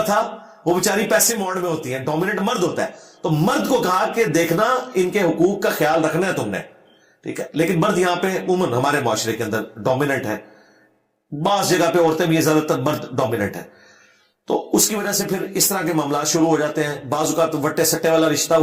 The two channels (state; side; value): identical; both; correlation 1.00